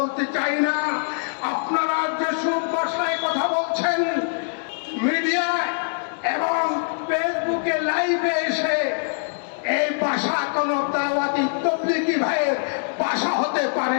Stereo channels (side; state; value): right; silent; 63 dB below the other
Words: চাই না। আপনারা যেসব ভাষায় কথা বলছেন মিডিয়ায় এবং ফেসবুকে লাইভে এসে, এই ভাষা কোনো দাওয়াতি তবলিগি ভাইয়ের ভাষা হতে পারে